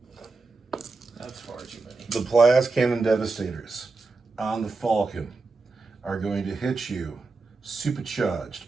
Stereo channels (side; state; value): left; quieter; 3.8 dB